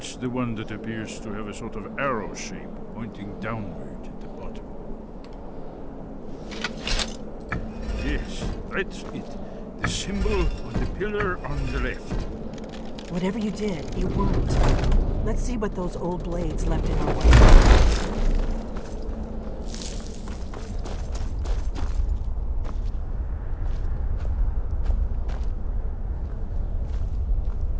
the one that appears to have a sort of arrow shape pointing downward at the bottom. Yes, that's it. The symbol on the pillar on the left. Whatever you did, it worked. Let's see what those old blades left in our way.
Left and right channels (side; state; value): both; identical; correlation 1.00